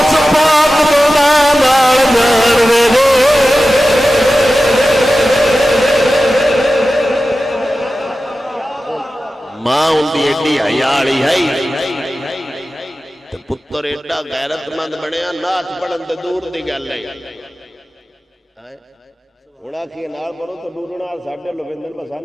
پاک دے نال جان وے ماں ان دی ایڈی حیا والی ہے تے پتر پتر ایڈا غیرت مند بنیا نعت پڑھن تے دور دی گل ہے ہونا کی نال پڑھو تو ڈورنا ساڈے لویندر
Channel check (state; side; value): normal; both; correlation 0.94